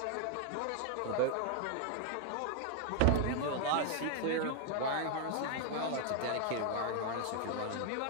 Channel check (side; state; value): both; different; correlation 0.00